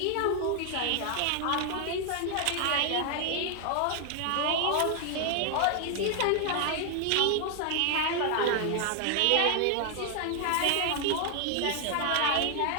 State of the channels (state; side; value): different; both; correlation 0.00